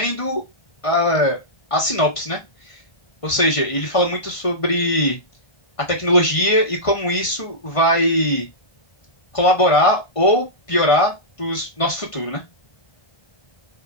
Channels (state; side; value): late; right; 1.5 ms